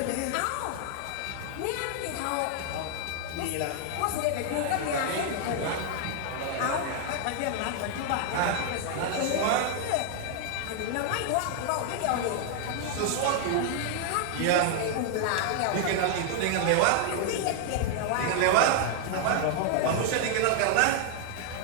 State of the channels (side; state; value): both; different; correlation 0.00